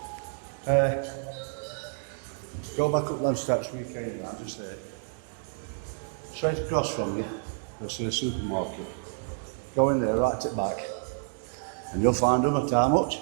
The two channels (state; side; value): silent; left; digital silence